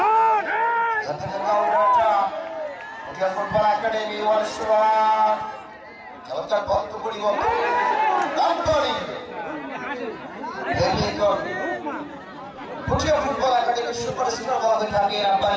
পুঠিয়া ফুটবল একাডেমি ওয়ার্ল্ড চমৎকার বক্ত পরিবর্তন পুঠিয়া ফুটবল একাডেমির সুপারস্টার বলা হয়ে থাকে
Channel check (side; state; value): both; identical; correlation 1.00